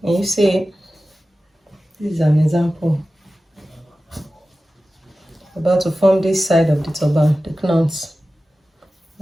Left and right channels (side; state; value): both; normal; correlation 0.95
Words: And you see, this is an example. About to form this side of the turban, the knots.